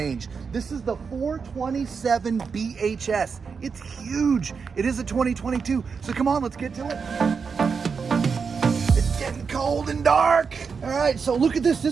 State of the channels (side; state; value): left; quieter; 5.6 dB